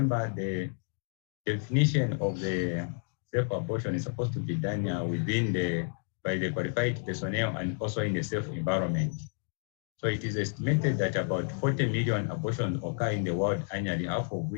the definition of the safe abortion is supposed to be done by the qualified personnel and also in a safe environment. So it is estimated that about 40 million abortions occur in the world annually, half of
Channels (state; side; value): silent; right; 57 dB below the other